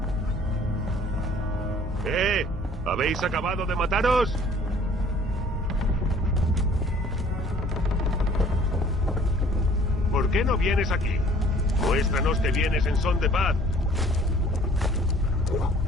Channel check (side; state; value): both; normal; correlation 0.54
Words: ¿Habéis acabado de mataros? ¿Por qué no vienes aquí? Muéstranos que vienes en son de paz.